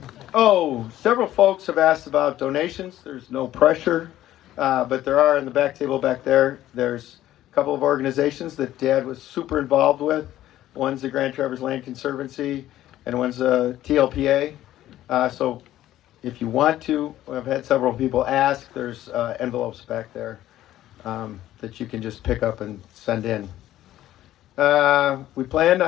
Several folks have asked about donations. There's no pressure, but there are in the back table back there. There's a couple of organizations that Dad was super involved with. One's the Grand Traverse Land Conservancy, and one's TLPA. So if you want to, I've had several people ask. There's envelopes back there that you can just pick up and send in. We plan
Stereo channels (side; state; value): right; quieter; 13.6 dB